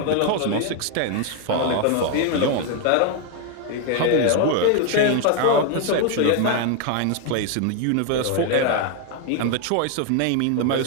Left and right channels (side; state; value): both; different; correlation 0.01